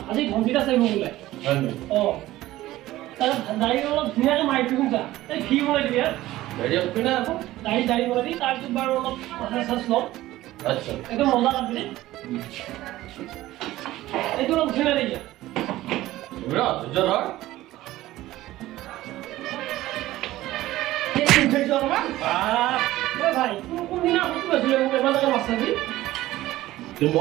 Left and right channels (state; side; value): quieter; left; 16.1 dB